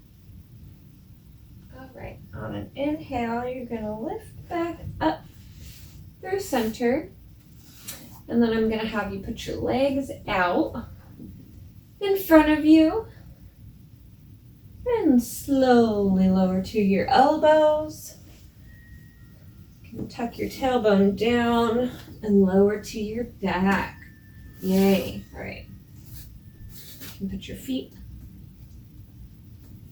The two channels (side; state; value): both; identical; correlation 1.00